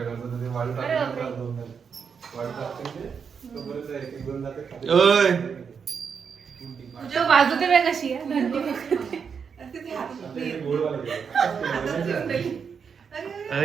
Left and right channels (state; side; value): quieter; left; 6.4 dB